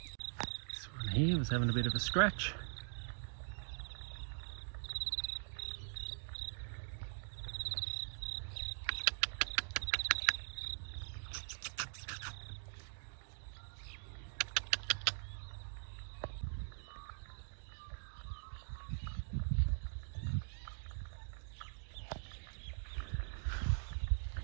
This one here was having a bit of a scratch.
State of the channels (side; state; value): left; silent; digital silence